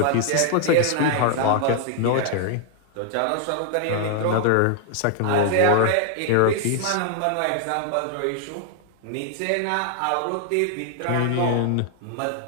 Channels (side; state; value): both; different; correlation 0.00